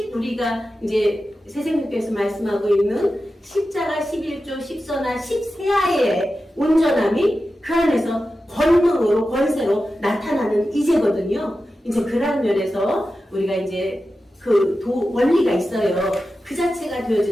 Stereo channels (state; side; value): normal; both; correlation 0.92